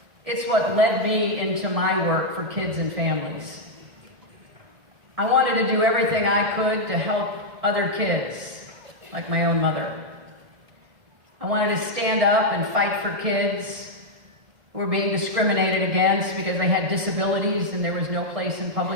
it's what led me into my work for kids and families. I wanted to do everything I could to help other kids, like my own mother. I wanted to stand up and fight for kids who were being discriminated against because they had disabilities and there was no place in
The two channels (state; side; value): late; left; 1.9 ms